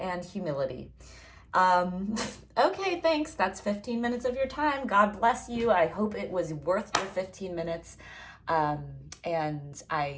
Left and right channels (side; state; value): both; identical; correlation 1.00